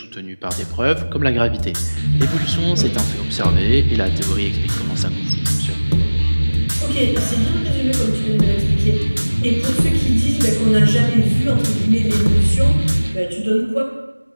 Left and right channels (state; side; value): inverted; both; correlation -1.00